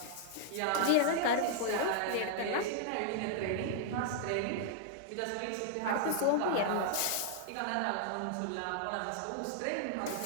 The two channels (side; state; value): both; different; correlation -0.01